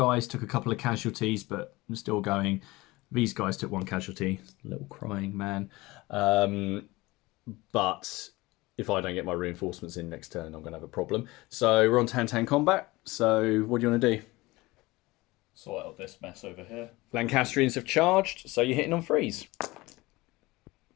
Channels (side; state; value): right; quieter; 21.1 dB